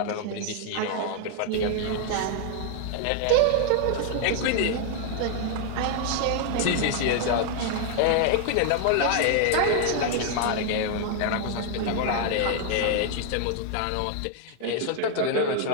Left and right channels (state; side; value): different; both; correlation 0.00